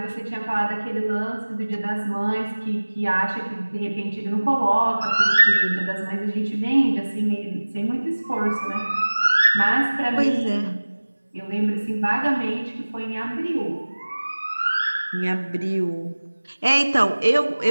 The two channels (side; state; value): both; inverted; correlation -1.00